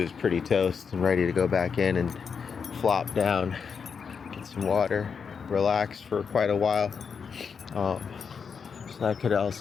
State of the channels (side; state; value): right; quieter; 6.1 dB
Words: pretty toast and ready to go back in and flop down, get some water, relax for quite a while. So that could